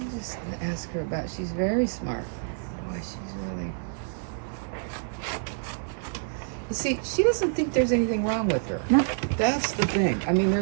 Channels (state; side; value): silent; left; digital silence